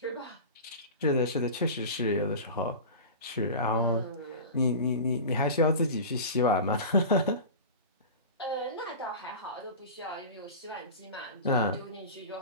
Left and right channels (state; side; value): inverted; both; correlation -0.31